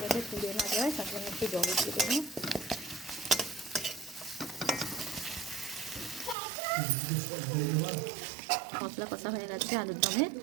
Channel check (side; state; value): left; drops out; at 6.4 s